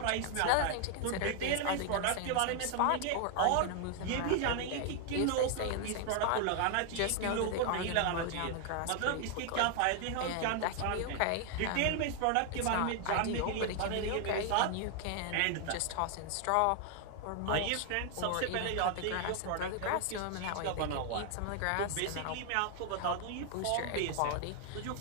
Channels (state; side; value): different; both; correlation 0.00